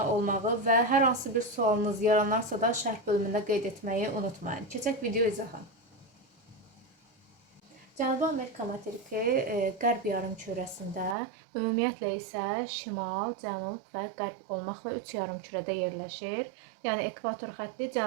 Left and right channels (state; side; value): drops out; left; at 11.2 s